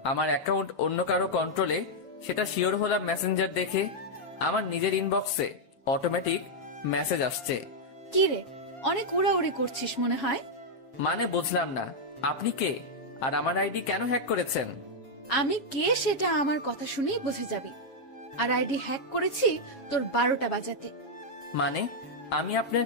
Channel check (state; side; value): late; right; 7.6 ms